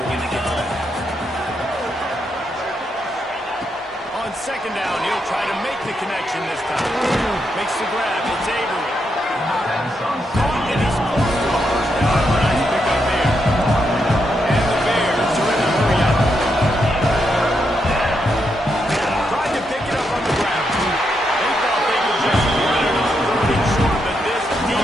when you get to that. On second down, he'll try to make the connection this time. Makes the grab. It's Avery. Caught, and he's close to a first down. Nice pick up there. And the Bears are in the hurry up. Tried to pick it up on the ground. They thought they could just run it on third and short, but this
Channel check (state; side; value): normal; both; correlation 0.81